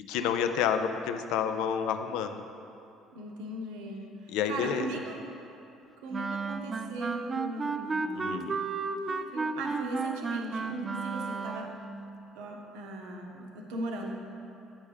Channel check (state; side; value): normal; both; correlation 0.52